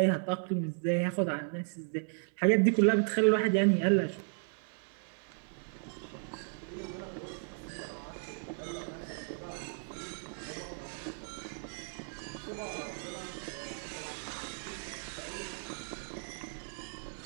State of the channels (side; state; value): left; silent; 54 dB below the other